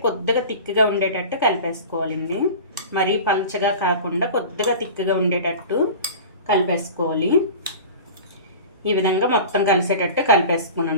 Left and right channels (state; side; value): inverted; both; correlation -0.36